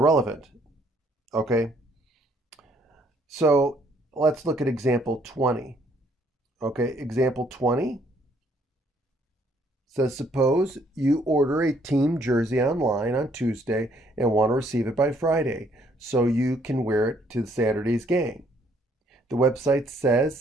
Okay, so let's look at example 20. Okay, example 20 says, suppose you order a team jersey online on Tuesday and want to receive it by Friday so you can wear it to Saturday's game. The website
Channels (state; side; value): normal; both; correlation 0.66